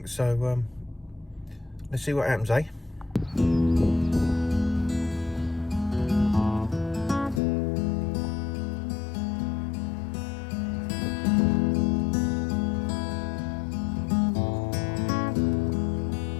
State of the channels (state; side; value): drops out; right; at 7.4 s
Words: So let's see what happens, eh?